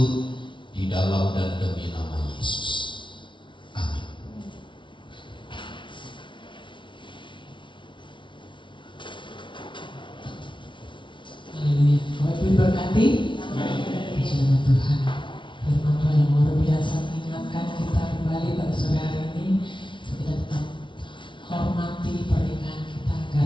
di dalam dan demi nama Yesus. Amin. Haleluya. Bapak Ibu diberkati. Puji nama Tuhan. Firman Tuhan yang luar biasa mengingatkan kita kembali pada sore hari ini, kita tetap hormati pernikahan kita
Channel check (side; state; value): right; late; 0.24 ms